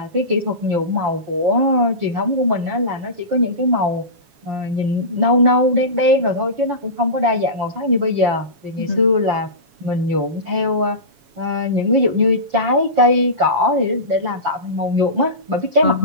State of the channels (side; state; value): left; late; 7.2 ms